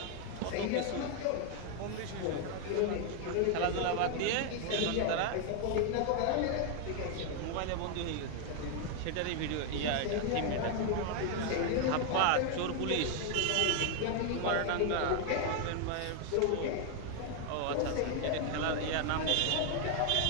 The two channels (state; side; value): different; both; correlation 0.01